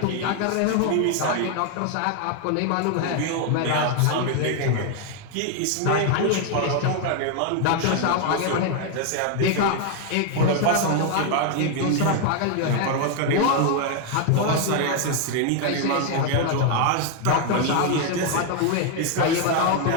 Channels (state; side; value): different; both; correlation 0.01